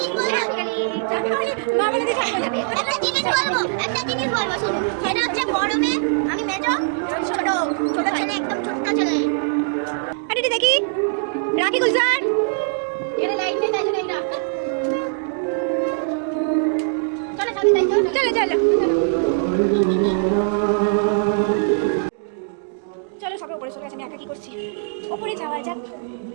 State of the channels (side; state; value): left; silent; 64 dB below the other